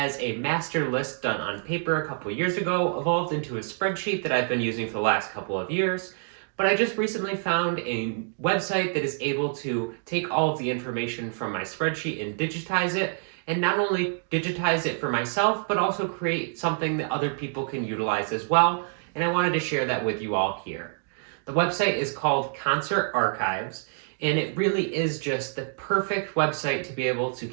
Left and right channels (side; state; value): left; silent; digital silence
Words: a master list done on paper a couple years ago evolved into a spreadsheet that I've been using for the last couple of years. But I just recently found a website that is able to take all of the information from my spreadsheet and digitize it, and not only digitize it for myself, but also create something that other people can utilize as well. And I wanted to share that with you all here. The website is called Concert Archives, and it really is just the perfect website to be able to